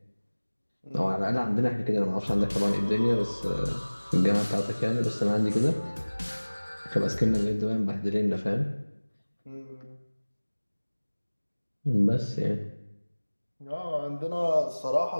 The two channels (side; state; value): both; inverted; correlation -1.00